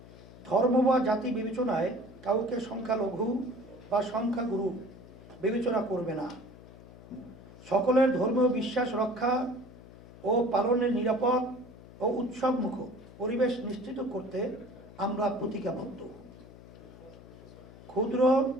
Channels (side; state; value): left; noise; hum, 19 dB below the sound